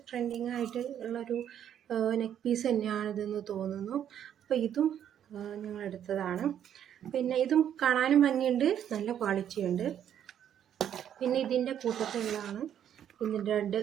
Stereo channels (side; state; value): left; quieter; 9.8 dB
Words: ട്രെൻഡിങ് ആയിട്ട് ഉള്ളൊരു നെക്ക് പീസ് തന്നെയാണിതെന്ന് തോന്നുന്നു. അപ്പോൾ ഇതും ഞങ്ങൾ എടുത്തതാണ്. പിന്നെ ഇതും കാണാനും ഭംഗിയുണ്ട്, നല്ല ക്വാളിറ്റി ഉണ്ട്. പിന്നെ ഇതിൻ്റെ കൂട്ടത്തിലുള്ളതാണ് ഇതിൻ്റെ 2